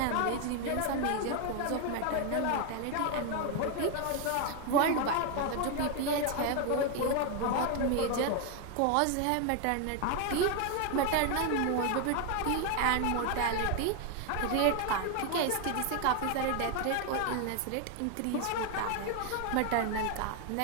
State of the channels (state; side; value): different; both; correlation 0.01